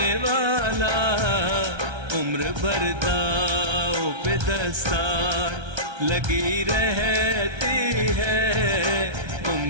वाला। उम्र भर दाव पे दस्तार लगी रहती है,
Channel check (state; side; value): late; left; 1.3 ms